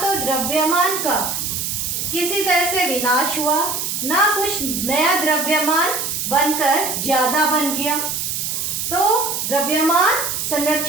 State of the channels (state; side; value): noise; right; hiss, 2 dB below the sound